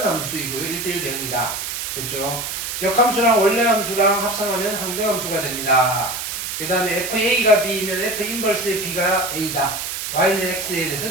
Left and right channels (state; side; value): noise; right; hiss, 5 dB below the sound